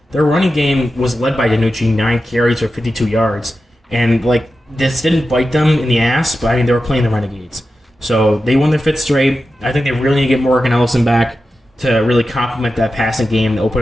Their running game was led by DiNucci, 9 carries for 52 yards. And, like, this didn't bite them in the ass, but, I mean, they were playing the Renegades. So they won their 5th straight. I think they really need to get Morgan Ellison back to really complement that passing game and open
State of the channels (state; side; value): normal; both; correlation 0.92